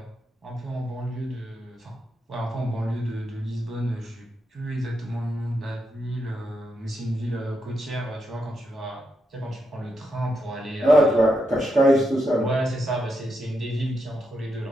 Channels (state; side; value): normal; both; correlation 0.83